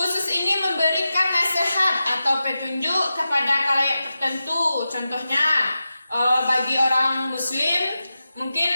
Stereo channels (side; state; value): both; inverted; correlation -0.92